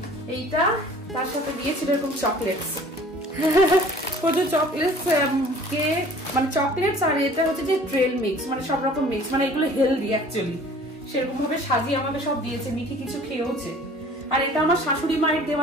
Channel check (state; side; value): normal; both; correlation 0.49